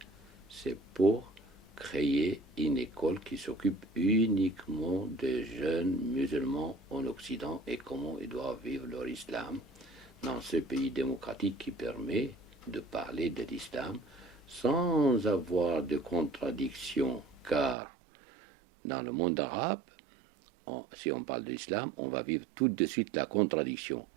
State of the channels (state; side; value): drops out; left; at 17.8 s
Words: c'est pour créer une école qui s'occupe uniquement des jeunes musulmans en Occident et comment ils doivent vivre leur islam dans ce pays démocratique qui permet de parler de l'islam sans avoir de contradiction, car dans le monde arabe, si on parle de l'islam, on va vivre tout de suite la contradiction.